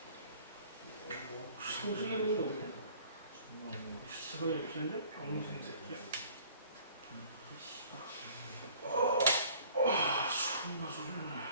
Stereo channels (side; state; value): both; inverted; correlation -0.52